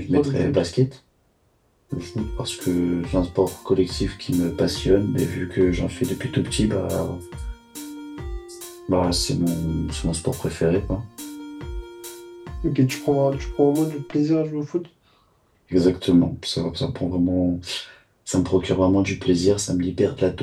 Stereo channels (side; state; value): both; identical; correlation 1.00